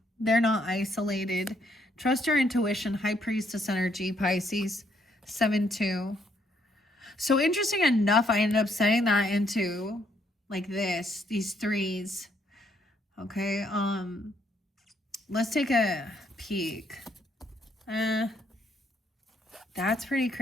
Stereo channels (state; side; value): normal; both; correlation 0.70